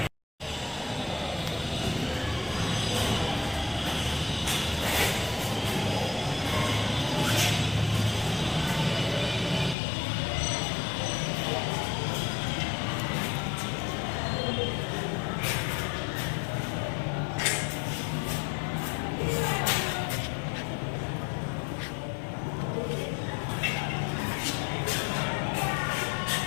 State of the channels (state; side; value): drops out; right; at 9.8 s